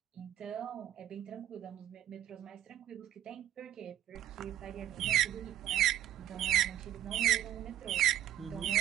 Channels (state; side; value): quieter; left; 11.9 dB